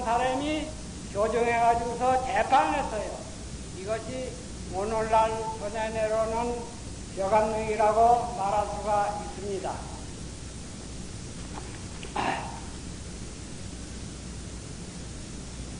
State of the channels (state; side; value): identical; both; correlation 1.00